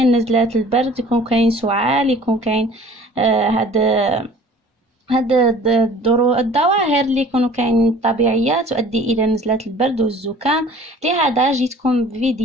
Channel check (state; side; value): normal; both; correlation 0.48